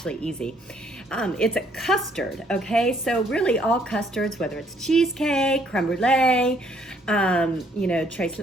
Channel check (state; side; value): normal; both; correlation 0.66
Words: easy. It's a custard, okay? So really all custards, whether it's cheesecake, creme brulee, not tres